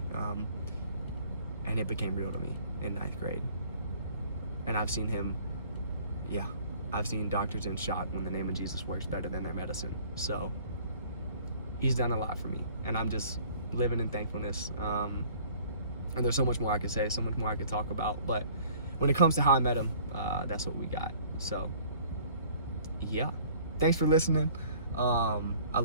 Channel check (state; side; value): inverted; both; correlation -0.53